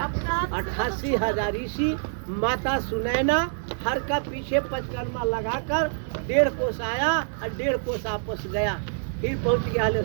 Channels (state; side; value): silent; left; digital silence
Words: 88,000 ऋषि, माता सुनैना हर का पीछे पंचकर्मा लगाकर 1.5 कोस आया और 1.5 कोस आपस गया। फिर पहुंच गया